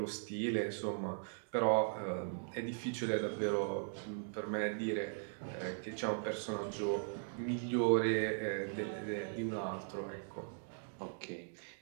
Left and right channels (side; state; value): left; silent; digital silence